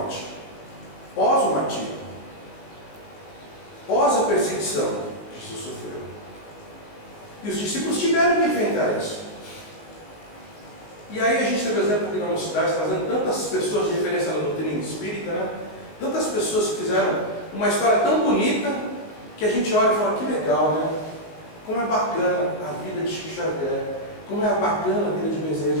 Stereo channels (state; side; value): late; right; 19 ms